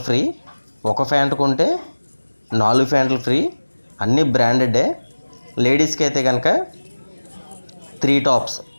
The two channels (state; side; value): inverted; both; correlation -1.00